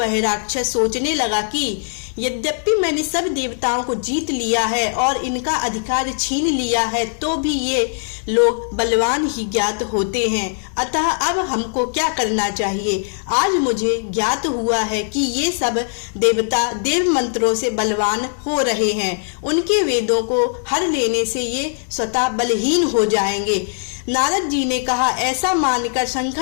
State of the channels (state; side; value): silent; right; digital silence